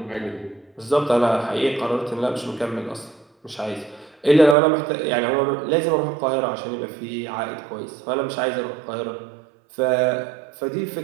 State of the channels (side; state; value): left; drops out; at 4.5 s